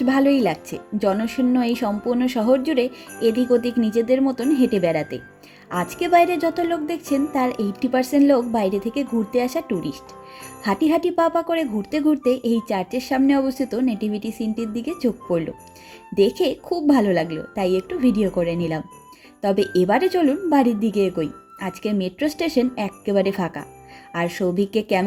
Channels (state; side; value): identical; both; correlation 1.00